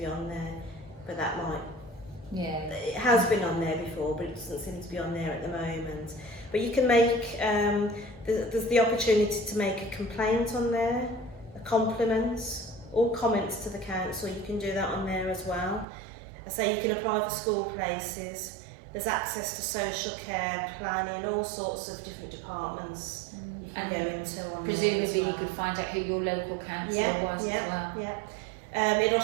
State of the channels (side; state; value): left; drops out; at 15.9 s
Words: on there. But that might, it has been on there before, but it doesn't seem to be on there at the moment. But you can make, there's the opportunity to make a complaint on there, a compliment, or comments to the council. You can do that on there as well. I say you can apply for school places. There's access to social care, planning, all sorts of different departments you can go into on there as well. Presumably you could find out who your local councillor was as well. Yeah. It'll